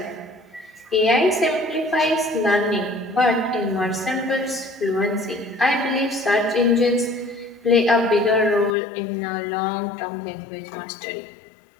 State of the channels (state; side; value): drops out; right; at 8.8 s